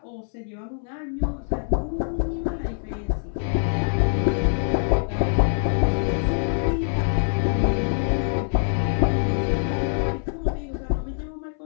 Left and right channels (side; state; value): right; silent; 62 dB below the other